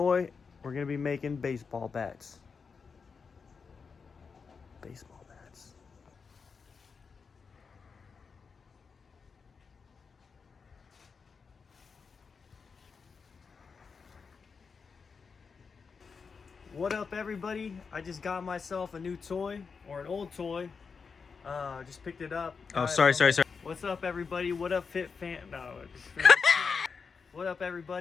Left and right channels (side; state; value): right; quieter; 5.4 dB